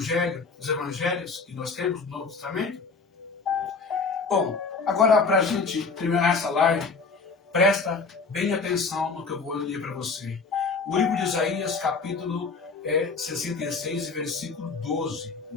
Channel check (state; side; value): quieter; right; 4.6 dB